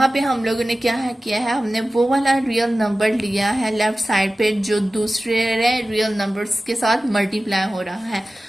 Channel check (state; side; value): normal; both; correlation 0.95